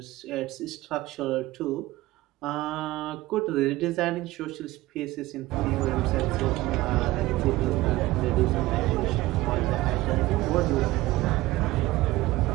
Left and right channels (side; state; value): left; quieter; 18.2 dB